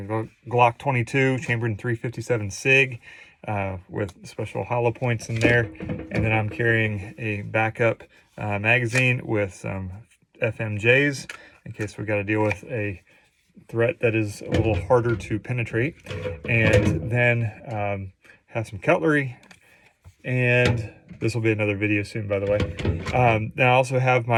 a Glock 22 chambered in 357 SIG with special hollow points in there. And then I'm carrying a backup magazine with some FMJs in case we've got to deal with a threat that is a little harder to penetrate. And then have some cutlery. And this will be another video soon, by the way. Then I also have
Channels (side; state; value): both; identical; correlation 1.00